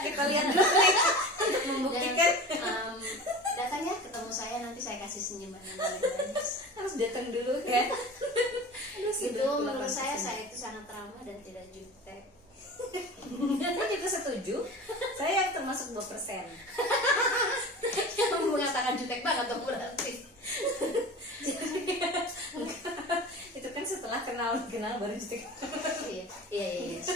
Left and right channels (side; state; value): both; normal; correlation 0.35